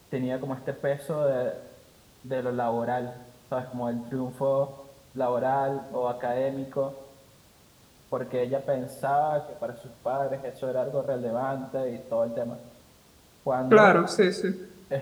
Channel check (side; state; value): both; identical; correlation 1.00